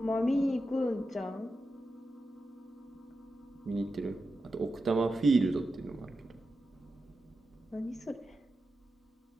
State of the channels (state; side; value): normal; both; correlation 0.90